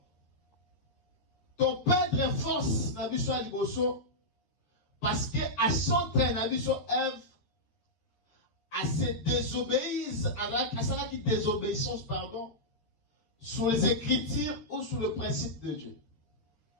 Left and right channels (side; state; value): right; late; 12 ms